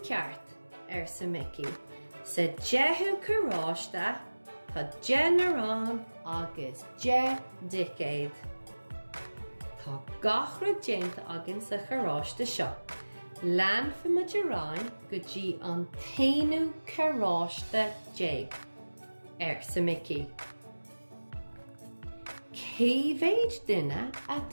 ceart sa Mickey. Sa 10 choráiste tá 10 narán agus 10 dicéad. Tá gachra déanta agan sa choráiste seo. Lean fiimiid a rá go dtí an 10 choráiste 10 sa Mickey. Céimhéid duine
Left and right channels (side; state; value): both; inverted; correlation -1.00